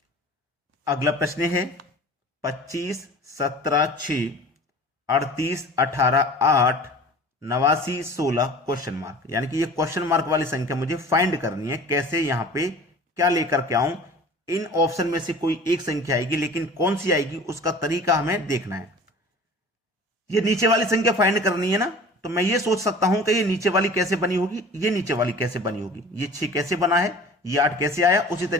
अगला प्रश्न है 25, 17, 6, 38, 18, 8, 89, 16 क्वेश्चन मार्क, यानी कि ये क्वेश्चन मार्क वाली संख्या मुझे फाइंड करनी है। कैसे, यहां पे क्या लेकर के आऊं? इन ऑप्शन में से कोई एक संख्या आएगी, लेकिन कौन सी आएगी उसका तरीका हमें देखना है। ये नीचे वाली संख्या फाइंड करनी है ना, तो मैं ये सोच सकता हूं कि ये नीचे वाली कैसे बनी होगी, ये नीचे वाली कैसे बनी होगी, ये 6 कैसे बना है, ये 8 कैसे आया, उसी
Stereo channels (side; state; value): both; normal; correlation 0.43